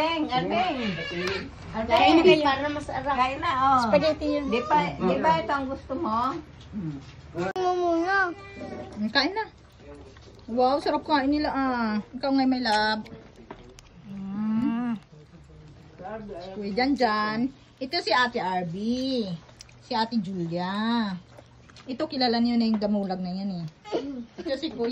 Arbeng. Kain na kayo. Para masarap. Kain na, oh. Spaghetti yun. Di ba ito ang gusto mo? Kain na. Wow, sarap kain nila Ikaw nga may lab. Kuya Janjan. Ito si Ate Arby. Si Ate Julia. Ito kilala niyo na yung damulag na yan Ito si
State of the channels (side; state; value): both; identical; correlation 1.00